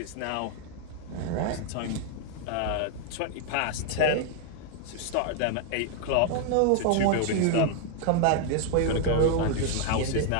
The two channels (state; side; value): different; both; correlation 0.00